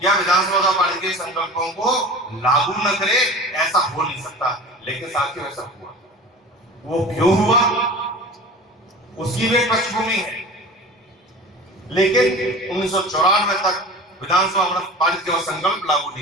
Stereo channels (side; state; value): both; normal; correlation 0.37